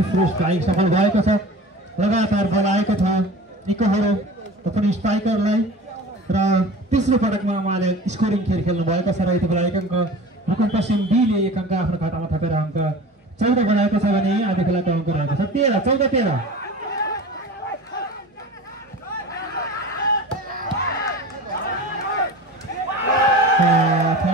स्ट्राइक सफल भएको छ। लगातार बल आएको छ निकोहरो पनि स्ट्राइकरलाई र तेस्रो पटकमा उहाँले स्कोरिङ खेल खेल्नु भएको छ र यति बेला 1 अङ्क रुकुम पश्चिम बीले 1 अङ्क आफ्नो खातामा थपेर अङ्क 14 बनाएको छ भने आदि खोलाको अङ्क रहेको छ 13-14-13।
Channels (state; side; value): normal; both; correlation 0.37